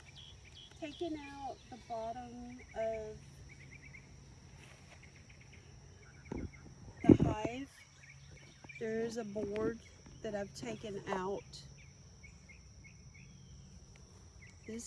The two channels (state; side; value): identical; both; correlation 1.00